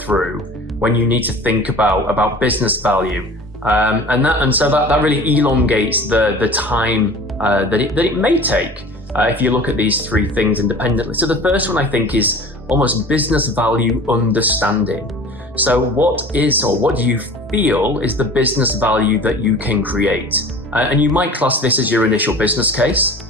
when you need to think about business value. And so that really elongates the time that it may take if you look at these three things independently. So the first one I think is almost business value understanding. So what do you feel is the business value that you can create? And you might class this as your initial business case.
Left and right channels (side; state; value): both; normal; correlation 0.41